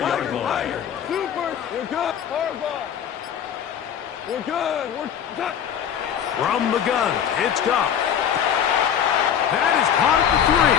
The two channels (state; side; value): quieter; right; 8.8 dB